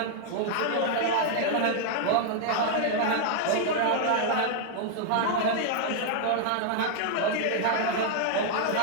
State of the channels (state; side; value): different; both; correlation 0.00